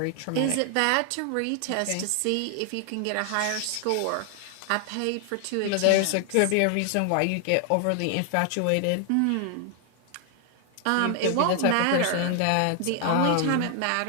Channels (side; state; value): both; different; correlation 0.00